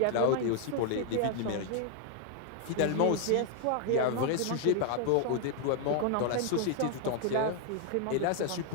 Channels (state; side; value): different; both; correlation 0.00